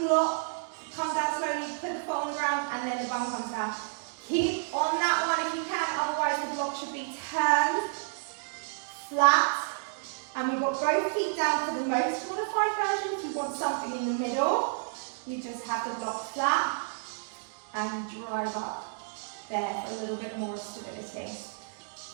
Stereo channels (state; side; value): silent; left; digital silence